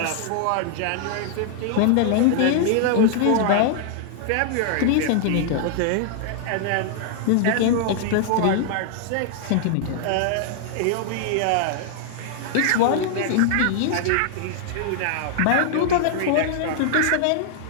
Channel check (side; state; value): both; different; correlation -0.01